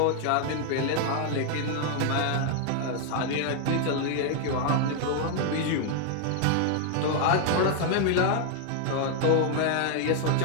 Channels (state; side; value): different; both; correlation 0.00